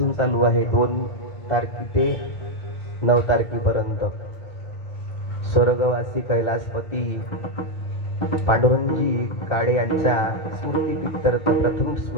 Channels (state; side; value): late; right; 1.4 ms